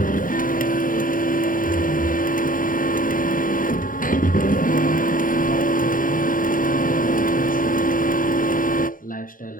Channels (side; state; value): right; late; 0.40 ms